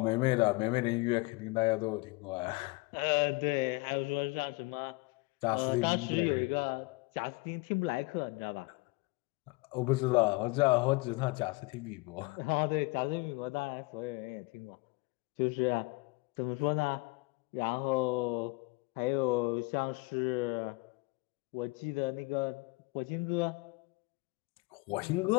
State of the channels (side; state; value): right; quieter; 24.7 dB